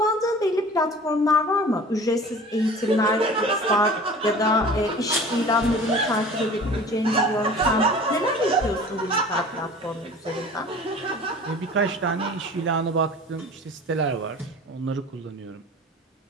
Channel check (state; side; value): normal; both; correlation 0.42